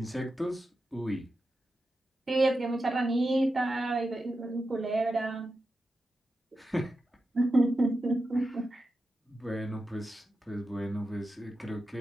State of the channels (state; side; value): normal; both; correlation 0.90